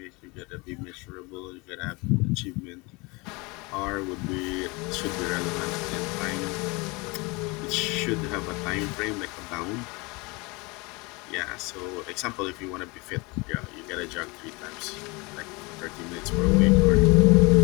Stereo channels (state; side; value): quieter; right; 26.7 dB